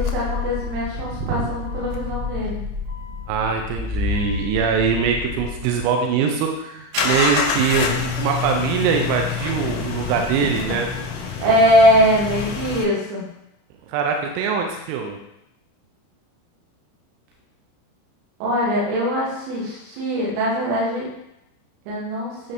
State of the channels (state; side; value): late; left; 33 ms